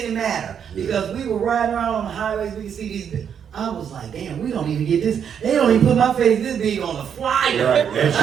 matter Yeah. because we were riding around on the highways, we could see these. I was like, damn, we don't even get this. They don't even put my face this big on the flyer. Right.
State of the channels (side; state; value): left; quieter; 8.0 dB